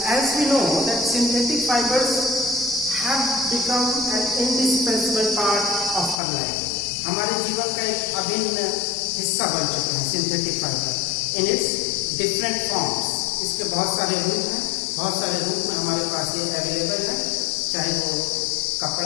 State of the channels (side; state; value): right; drops out; at 6.2 s